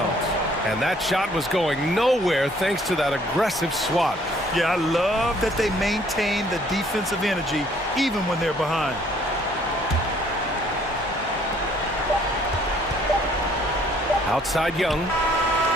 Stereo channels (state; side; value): normal; both; correlation 0.61